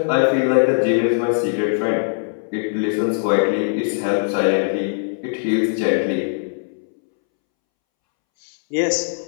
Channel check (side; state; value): right; silent; 65 dB below the other